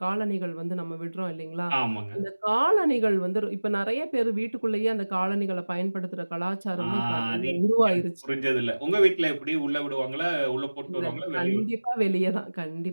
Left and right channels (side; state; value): both; inverted; correlation -1.00